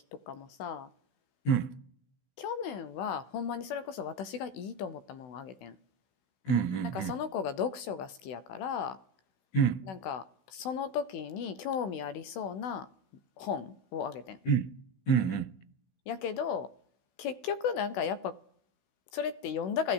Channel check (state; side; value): late; right; 16 ms